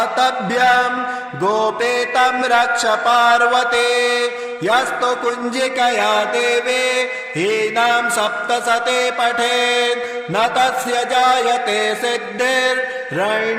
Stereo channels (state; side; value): identical; both; correlation 1.00